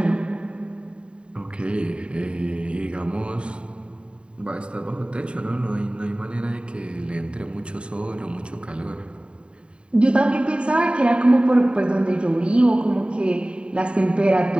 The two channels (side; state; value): left; late; 0.054 ms